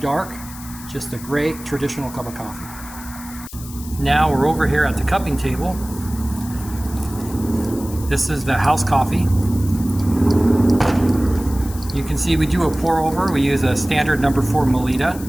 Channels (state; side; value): noise; left; hiss, 16 dB below the sound